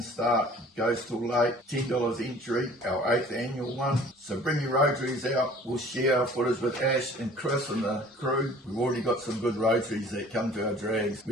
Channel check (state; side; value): normal; both; correlation 0.50